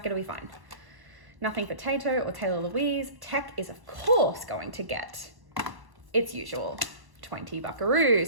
it'll be fine. Nothing for Tato or Taylah Louise. Tech is of course going to get its usual 20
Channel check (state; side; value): late; left; 1.1 ms